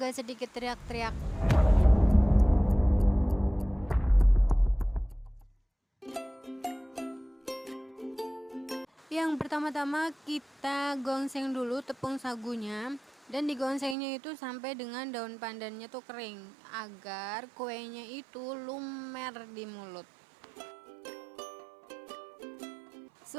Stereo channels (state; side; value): drops out; left; at 14.0 s